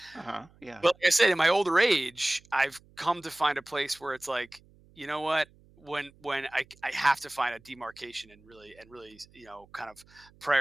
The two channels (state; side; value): noise; right; hum, 28 dB below the sound